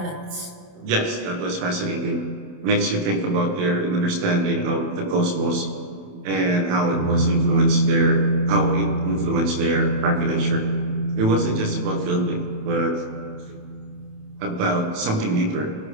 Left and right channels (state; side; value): late; left; 28 ms